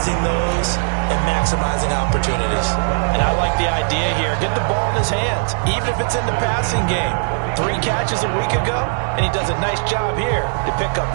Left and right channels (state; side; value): silent; left; digital silence